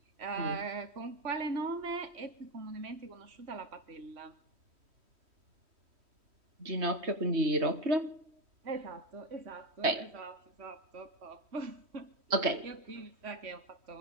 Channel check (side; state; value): left; late; 3.1 ms